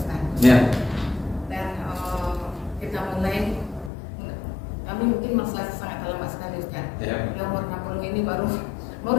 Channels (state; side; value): drops out; right; at 3.9 s